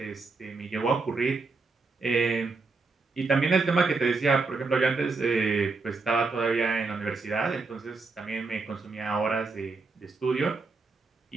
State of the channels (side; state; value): left; quieter; 4.0 dB